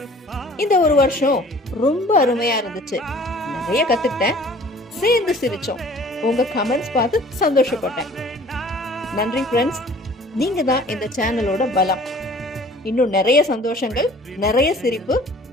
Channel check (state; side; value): normal; both; correlation 0.50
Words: இந்த 1 வருஷம் ரொம்ப அருமையா இருந்துச்சு. நிறைய கத்துக்கிட்டேன், சேர்ந்து சிரிச்சோம். உங்க கமெண்ட்ஸ் பார்த்து சந்தோஷப்பட்டேன். நன்றி ஃப்ரெண்ட்ஸ், நீங்க தான் இந்த சேனலோட பலம். இன்னும் நிறைய சந்தோஷங்கள், நிறைய சிரிப்பு,